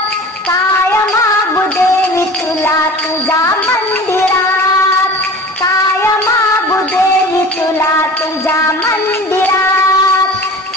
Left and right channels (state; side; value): normal; both; correlation 0.39